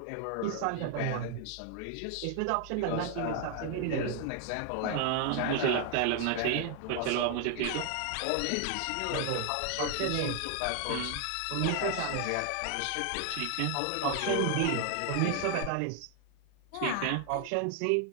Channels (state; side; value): different; both; correlation 0.00